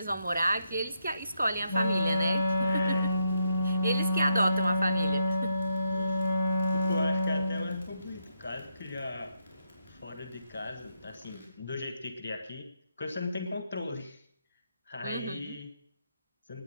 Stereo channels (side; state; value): both; inverted; correlation -0.81